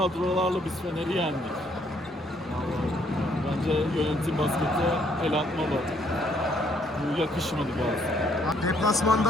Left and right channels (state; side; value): normal; both; correlation 0.68